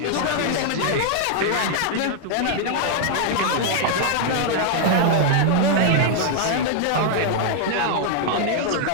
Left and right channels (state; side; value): different; both; correlation 0.00